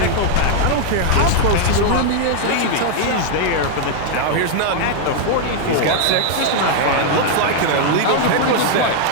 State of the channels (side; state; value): both; different; correlation 0.00